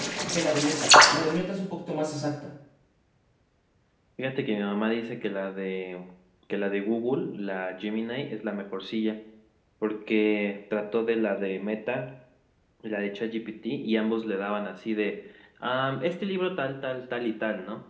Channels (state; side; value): identical; both; correlation 1.00